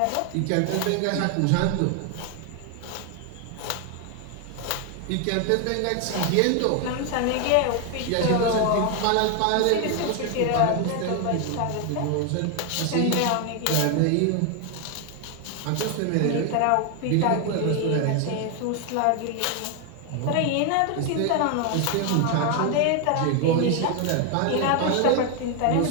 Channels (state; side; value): different; both; correlation 0.01